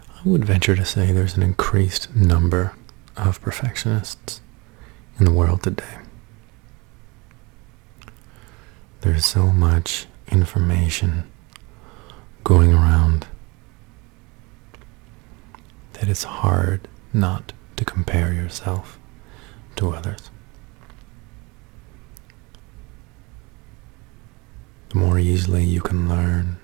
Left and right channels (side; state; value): left; quieter; 26.3 dB